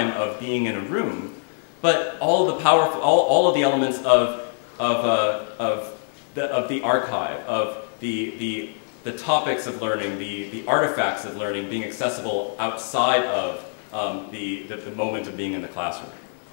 of being in a room, but all of the elements of the archive, of the topics of learning, the artifacts of learning being accessible outside of the moment of being in the classroom.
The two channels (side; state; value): right; silent; digital silence